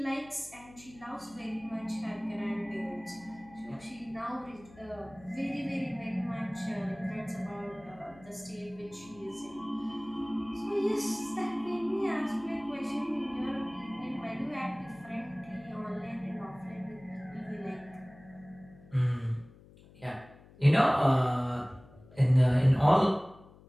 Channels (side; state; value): left; noise; hum, 23 dB below the sound